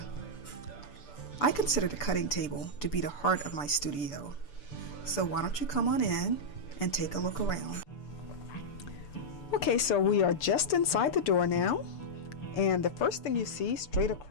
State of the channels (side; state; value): right; late; 6.9 ms